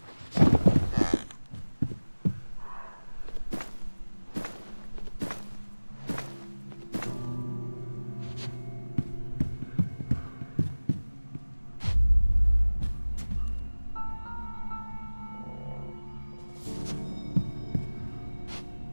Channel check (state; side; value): inverted; both; correlation -1.00